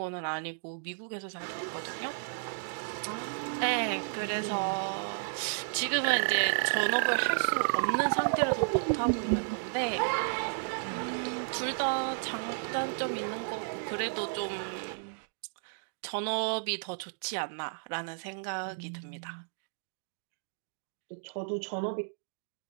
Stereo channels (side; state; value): left; silent; digital silence